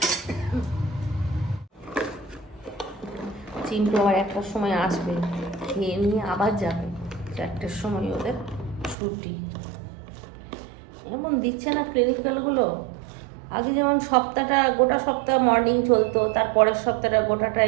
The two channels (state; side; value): drops out; left; at 9.0 s